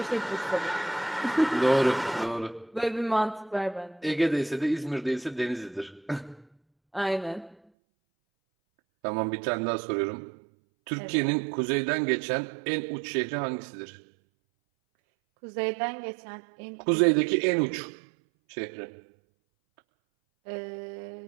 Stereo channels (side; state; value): left; drops out; at 7.6 s